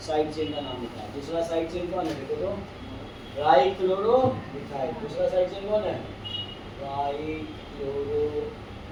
साइड चेन का नाम लिखा। दूसरा साइड चेन कौन है? देखो तो ट्राई क्लोरो मिथाइल। दूसरा साइड चेन कौन है? ट्राई क्लोरो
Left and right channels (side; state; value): both; identical; correlation 1.00